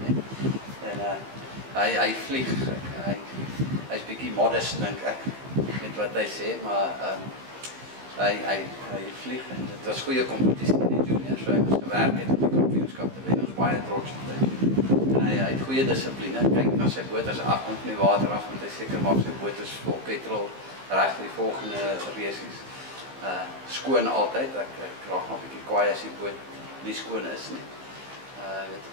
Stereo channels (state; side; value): late; left; 15 ms